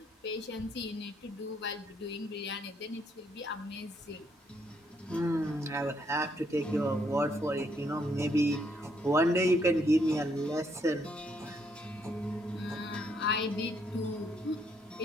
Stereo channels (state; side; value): normal; both; correlation 0.72